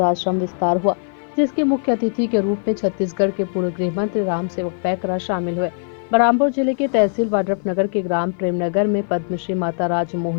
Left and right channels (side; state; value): right; silent; 55 dB below the other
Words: आश्रम विस्तार हुआ, जिसके मुख्य अतिथि के रूप में छत्तीसगढ़ के पूर्व गृह मंत्री रामसेवक पैकरा शामिल हुए। बलरामपुर जिले के तहसील वाड्रफनगर के ग्राम प्रेमनगर में पद्मश्री माता